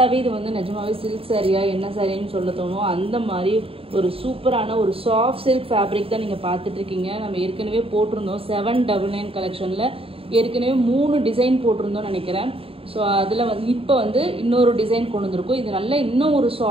இது வந்து நிஜமாவே சில்க் சாரியா என்ன சாரின்னு சொல்ல தோணும். அந்த மாதிரி ஒரு சூப்பரான ஒரு சாஃப்ட் சில்க் ஃபேப்ரிக் தான் நீங்கள் பார்த்துட்டு இருக்கீங்க. நம்ம ஏற்கனவே போட்டிருந்தோம் 799 கலெக்ஷனில் ஏற்கனவே 3 டிசைன் போட்டிருந்தோம் நினைக்கிறேன். ஸோ அதில் வந்து இப்போ வந்து இன்னொரு டிசைன் கொண்டு வந்திருக்கும். இது நல்ல இன்னும் ஒரு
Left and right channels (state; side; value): late; left; 0.27 ms